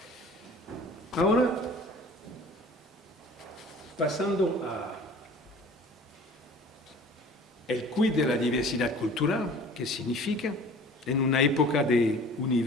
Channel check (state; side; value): normal; both; correlation 0.46